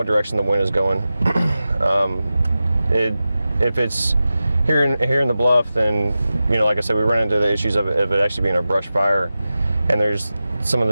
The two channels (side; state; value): both; inverted; correlation -0.94